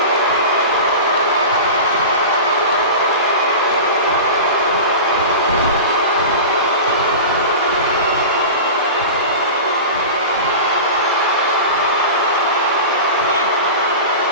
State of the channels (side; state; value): both; inverted; correlation -0.30